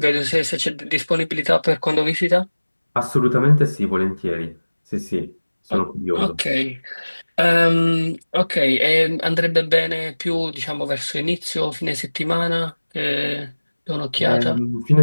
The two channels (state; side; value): inverted; both; correlation -1.00